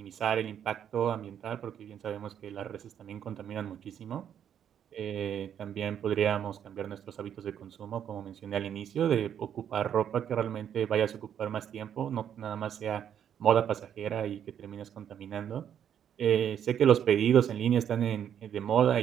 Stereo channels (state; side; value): quieter; left; 9.2 dB